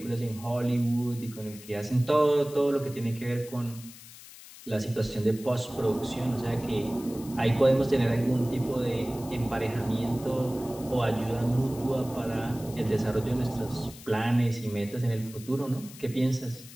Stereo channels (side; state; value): left; noise; hiss, 17 dB below the sound